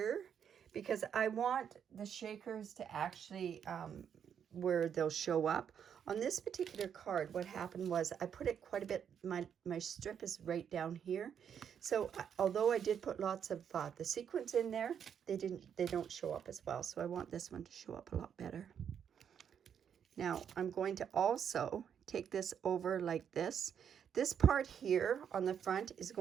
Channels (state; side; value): quieter; left; 8.1 dB